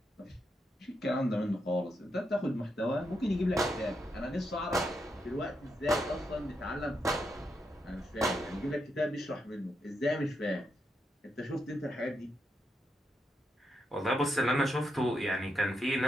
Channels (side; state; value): both; normal; correlation 0.82